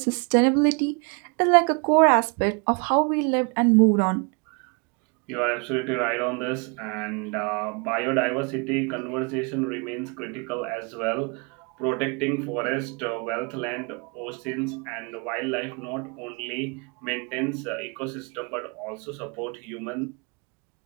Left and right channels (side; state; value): left; quieter; 33.6 dB